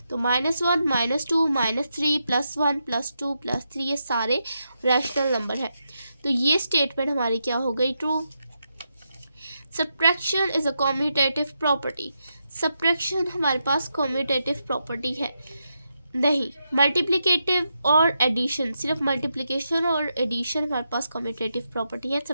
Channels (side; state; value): both; inverted; correlation -0.84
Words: तो -1, -2, -3, +1, +2, +3 ये सारे रैशनल नंबर है। तो ये स्टेटमेंट हमारी क्या हो गई? True. Subtraction is a commutative property. Subtraction हमारे पास कॉम्यूटेटिव प्रॉपर्टी है नहीं। मल्टीप्लिकेटिव और एडिशन, सिर्फ मल्टीप्लिकेशन और एडिशन हमारे पास कॉम्यूटेटिव प्रॉपर्टी है,